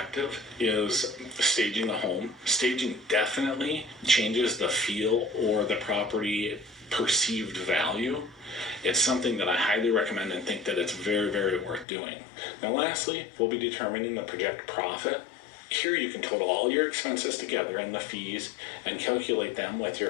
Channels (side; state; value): right; drops out; at 11.9 s